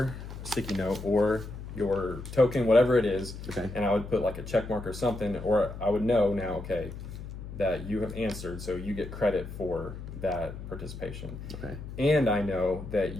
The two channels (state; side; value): noise; left; hum, 10 dB below the sound